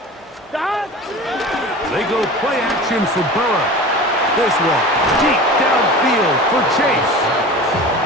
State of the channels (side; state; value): both; normal; correlation 0.35